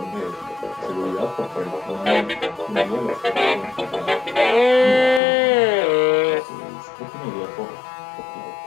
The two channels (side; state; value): right; drops out; at 5.2 s